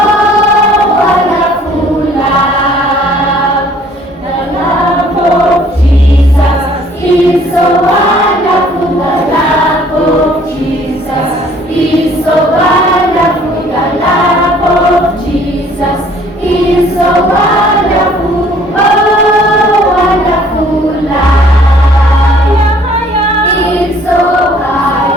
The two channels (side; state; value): both; normal; correlation 0.58